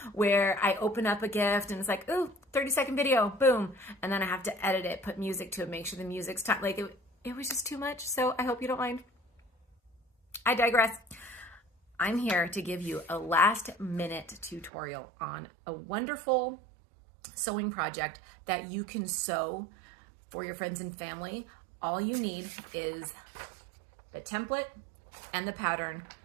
where I open up a gift and it's like, ooh, 30-second video, boom. And then I have to edit it, put music to it, make sure the music's time. Like it was just too much. So I hope you don't mind. I digress. I'm here to give you a last minute tutorial on a wonderful sewing project that you can sew for your friends and family. All you need is the template and the pattern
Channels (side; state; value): left; drops out; at 14.7 s